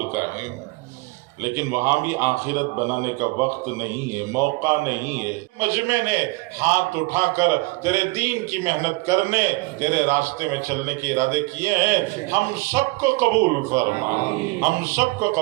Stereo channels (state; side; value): quieter; left; 24.9 dB